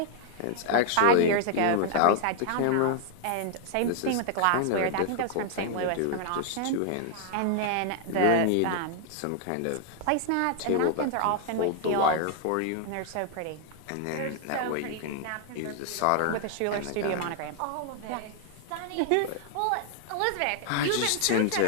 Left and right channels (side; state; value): both; different; correlation 0.00